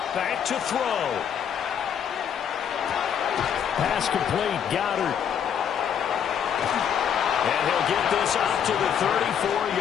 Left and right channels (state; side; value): quieter; right; 8.4 dB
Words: Back to throw. Pass complete. Goddard. And he'll get this up to the